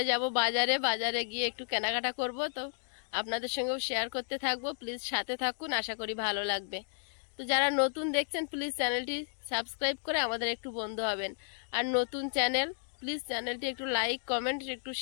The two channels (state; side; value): silent; right; digital silence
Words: যাব বাজারে গিয়ে একটু কেনাকাটা করব। তো আপনাদের সঙ্গেও শেয়ার করতে থাকবো, প্লিজ সাথে থাকুন, আশা করি ভালো লাগবে। তো যারা নতুন দেখছেন প্লিজ চ্যানেলটি সাবস্ক্রাইব করে আমাদের একটু বন্ধু হবেন। আর নতুন চ্যানেল, প্লিজ চ্যানেলটি একটু লাইক কমেন্ট একটু